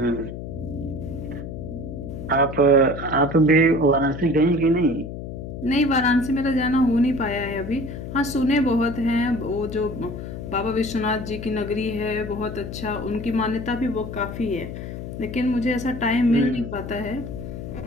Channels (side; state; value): left; noise; hum, 8 dB below the sound